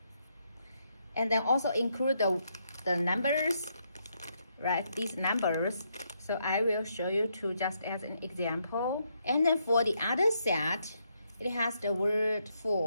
And then also include the numbers, right? These numbers. So I will show you two just as an example. And then for the other set, it has the word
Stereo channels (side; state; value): both; inverted; correlation -0.77